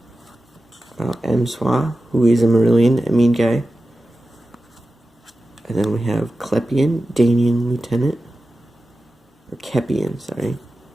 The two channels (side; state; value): both; normal; correlation 0.94